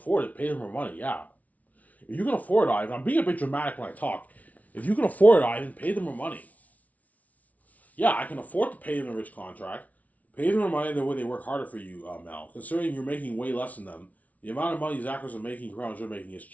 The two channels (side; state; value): right; late; 0.071 ms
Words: it, pay them more money. Yeah. If you can afford it, Ivan, I'm being a bit dramatic when I talk. If you can afford it, Ivan, pay them more money. Yeah, I can afford to pay them a rich contract. Pay them more money the way they work harder for you, Mel. Considering you're making way less than them, the amount of money these actors are making compared to you're making is